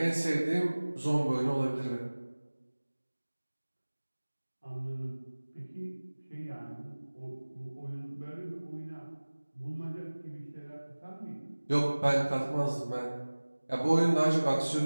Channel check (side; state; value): both; inverted; correlation -1.00